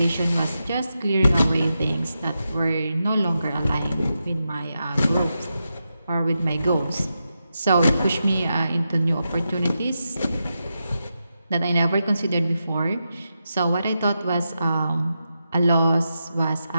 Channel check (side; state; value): both; inverted; correlation -0.88